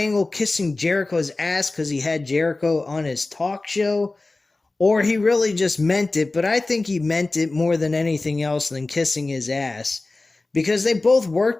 kissing Jericho's ass because he had Jericho on his talk show, or he really just meant it, but I think he meant it more than anything else than kissing his ass, because they both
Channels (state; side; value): quieter; right; 3.2 dB